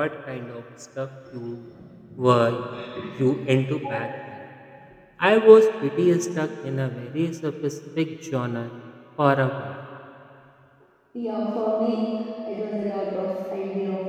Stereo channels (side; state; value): both; identical; correlation 1.00